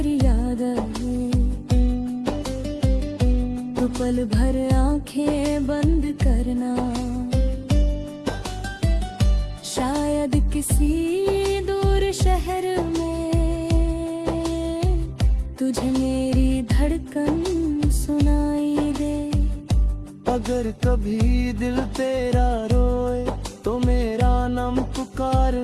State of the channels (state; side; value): identical; both; correlation 1.00